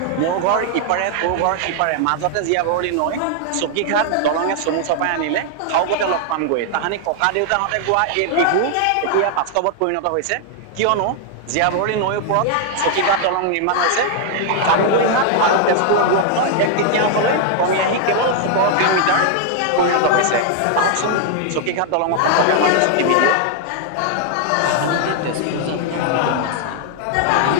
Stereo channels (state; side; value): different; both; correlation 0.00